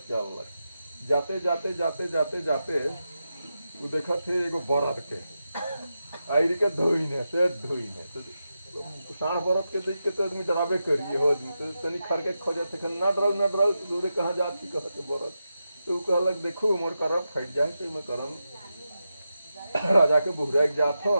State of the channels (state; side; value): inverted; both; correlation -0.89